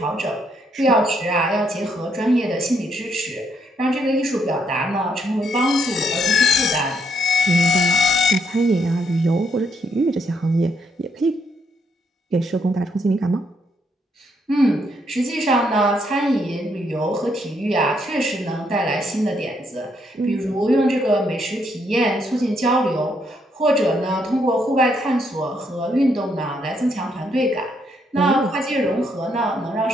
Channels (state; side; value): normal; both; correlation 0.74